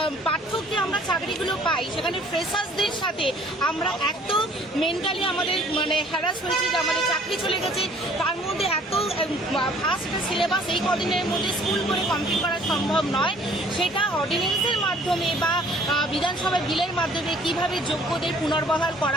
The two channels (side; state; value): both; normal; correlation 0.56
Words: পার্থক্যে আমরা চাকরিগুলো পাই, সেখানে ফ্রেশার্সদের সাথে আমরা এত মেন্টালি আমাদের হ্যারাস হয়েছি যে আমাদের চাকরি চলে গেছে। তার মধ্যে এত ফাস্ট সিলেবাস এই কদিনের মধ্যে স্কুল করে কমপ্লিট করা সম্ভব নয়। সেটা অর্ডিন্যান্সের মাধ্যমে বা বিধানসভার বিলের মাধ্যমে কিভাবে যোগ্যদের পুনর্বহাল